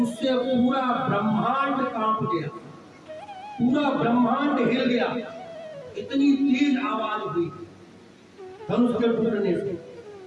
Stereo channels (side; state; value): both; identical; correlation 1.00